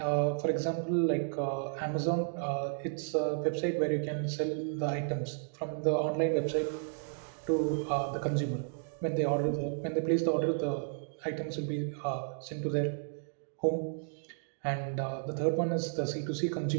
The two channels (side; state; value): left; silent; digital silence